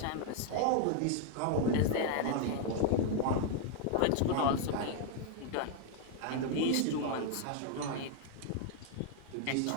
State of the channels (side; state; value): both; different; correlation 0.00